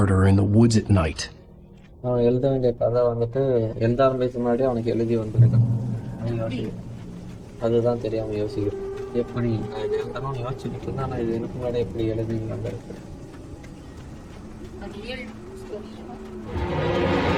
in the woods at night.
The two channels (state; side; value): identical; both; correlation 1.00